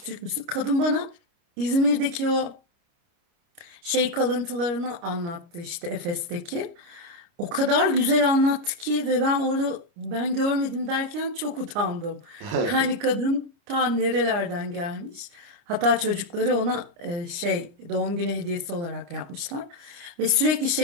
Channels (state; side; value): late; left; 29 ms